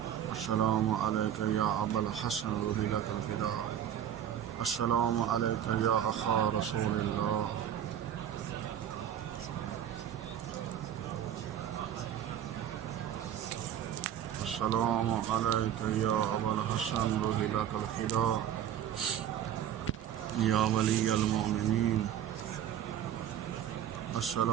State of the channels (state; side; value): quieter; left; 10.1 dB